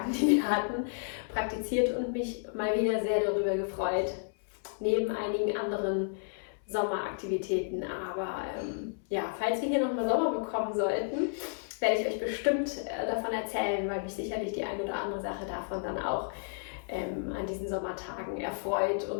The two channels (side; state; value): right; silent; 57 dB below the other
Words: die wir hatten, praktiziert und mich mal wieder sehr darüber gefreut. Neben einigen anderen Sommeraktivitäten. Aber falls wir hier nochmal Sommer bekommen sollten, werde ich euch bestimmt davon erzählen, weil mich sicherlich die eine oder andere Sache davon dann auch an diesen Sommertagen erfreut